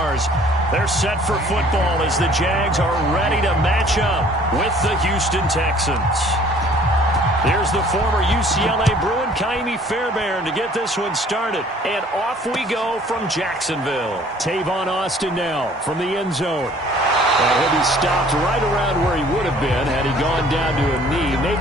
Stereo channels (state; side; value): normal; both; correlation 0.55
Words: They're set for football as the Jags are ready to match up with the Houston Texans. Here's the former UCLA Bruin, Kaimi Fairbairn, to get this one started. And off we go from Jacksonville. Tavon Austin now from the end zone. And he'll be stopped right around where he would have been had he gone down to a knee,